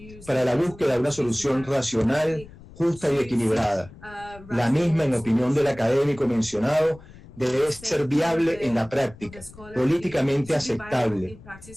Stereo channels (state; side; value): noise; left; rumble, 20 dB below the sound